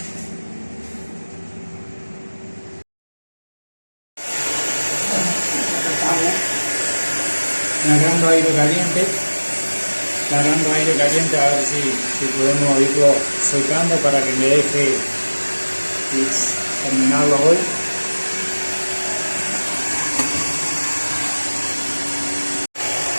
largando aire caliente, a ver si podemos irlo secando para que me deje terminarlo hoy.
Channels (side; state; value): both; inverted; correlation -1.00